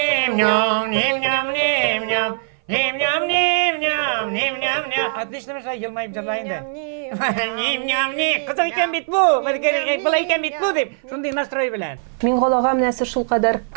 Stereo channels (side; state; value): left; silent; 57 dB below the other